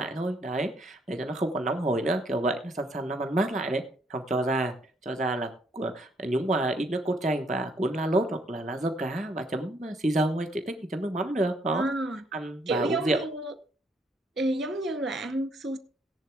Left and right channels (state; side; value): normal; both; correlation 0.69